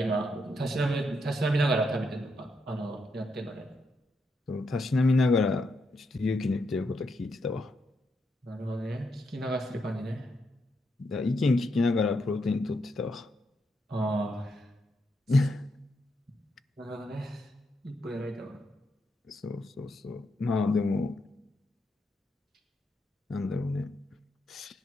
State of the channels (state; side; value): normal; both; correlation 0.81